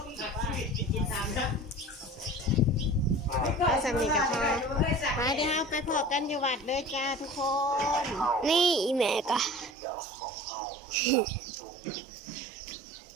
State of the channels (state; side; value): drops out; left; at 9.8 s